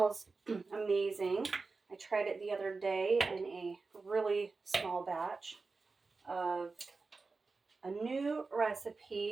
amazing. I tried it the other day in a really small batch of a new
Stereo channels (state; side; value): quieter; left; 4.1 dB